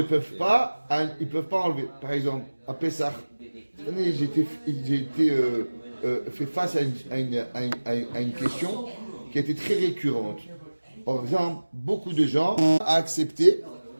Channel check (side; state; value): both; inverted; correlation -1.00